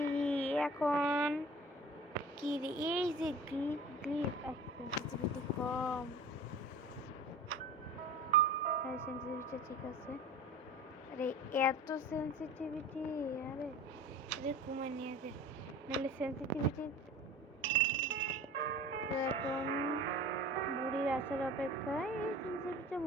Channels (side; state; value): both; normal; correlation 0.38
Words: এখন কি রে, এই যে সেন্সিটিভিটি কম, সেন্সিটিভিটি ঠিক আছে। আরে এত সেন্সিটিভিটি, আরে কমায় নিয়ে দে, নাহলে সেন্সিটিভিটি। তো এখন বুড়ির আসার অপেক্ষায় এই সেন্সিটিভিটা